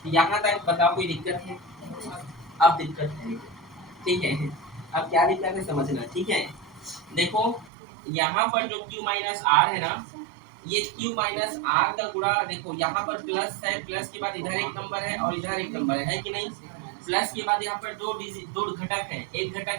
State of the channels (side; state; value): left; drops out; at 7.7 s